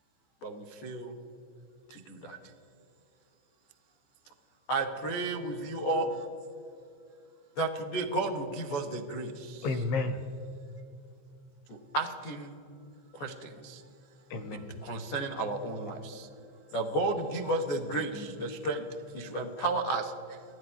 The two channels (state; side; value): late; right; 14 ms